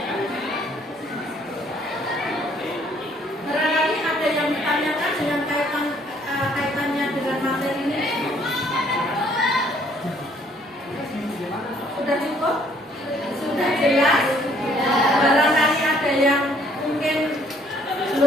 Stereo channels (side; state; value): both; normal; correlation 0.63